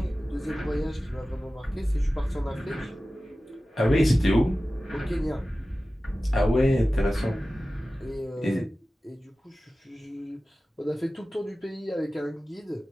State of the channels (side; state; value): both; normal; correlation 0.96